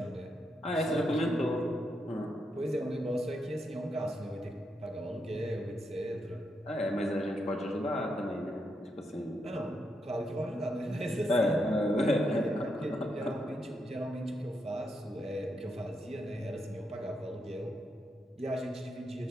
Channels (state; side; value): normal; both; correlation 0.81